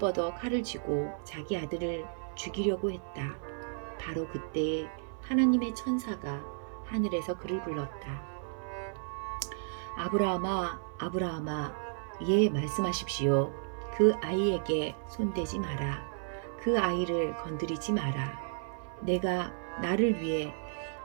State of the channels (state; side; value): silent; left; 56 dB below the other